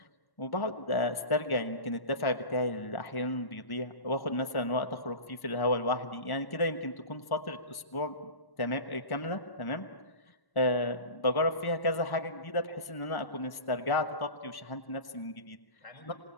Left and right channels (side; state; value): right; late; 1.1 ms